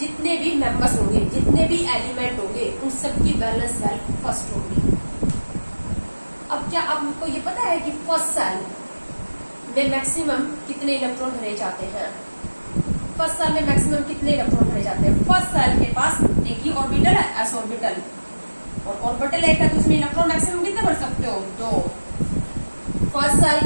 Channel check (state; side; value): inverted; both; correlation -1.00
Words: भी मेंबर्स होंगे, जितने भी एलिमेंट होंगे, उन सबकी वैलेंस सेल फर्स्ट होगी। अब क्या आपको ये पता है कि फर्स्ट सेल में मैक्सिमम कितने इलेक्ट्रॉन भरे जाते हैं? फर्स्ट सेल में मैक्सिमम कितने इलेक्ट्रॉन भरे जाते हैं? फर्स्ट सेल के पास एक ही ऑर्बिटल है, एस ऑर्बिटल, और ऑर्बिटल एक है, तो उसमें इलेक्ट्रॉन मैक्सिमम कितने भर सकते हो? 2। फर्स्ट